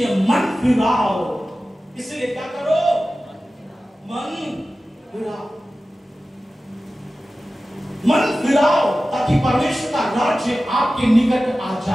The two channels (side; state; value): both; normal; correlation 0.95